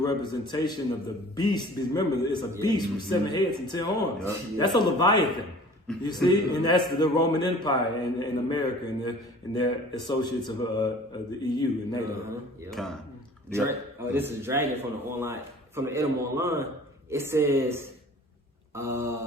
representation of the beast. Remember, it's a beast with 7 heads and 10 horns. That's a Leviathan. You see, and that's the Roman Empire and America and their associates of the EU and NATO. This is Dragon from the Edom Online. It says.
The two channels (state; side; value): normal; both; correlation 0.46